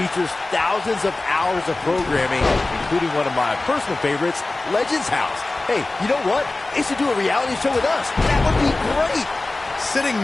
thousands of hours of programming, including one of my personal favorites, Legends House. Hey, you know what? They should do a reality show with us. That would be great. Sitting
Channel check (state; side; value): quieter; right; 3.1 dB